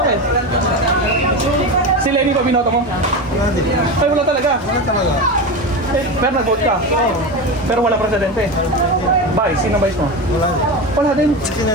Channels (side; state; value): both; normal; correlation 0.22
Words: Si Lenny pa binoto mo? Ay, wala talaga. Eh, pero nag-vote ka. Pero wala presidente. Vice, sino vice mo? Wala din.